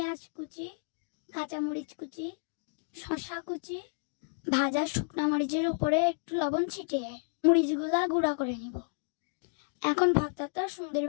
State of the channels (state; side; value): silent; right; digital silence